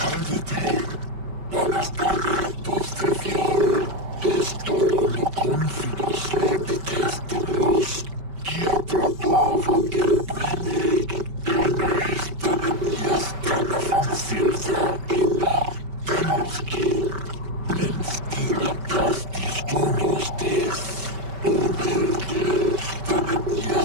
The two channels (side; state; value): left; late; 5.2 ms